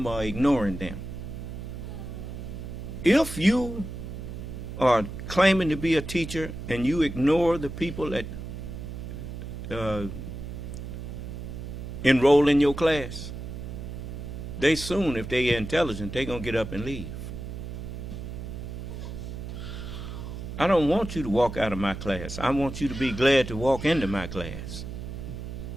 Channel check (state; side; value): noise; right; hum, 8 dB below the sound